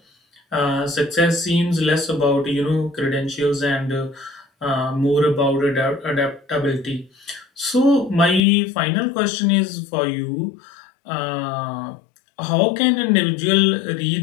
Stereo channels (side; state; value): right; drops out; at 8.4 s